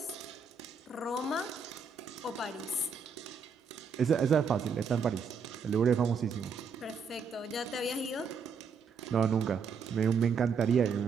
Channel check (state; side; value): quieter; left; 5.5 dB